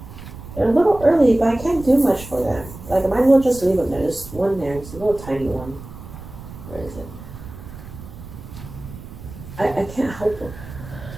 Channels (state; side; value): noise; right; rumble, 14 dB below the sound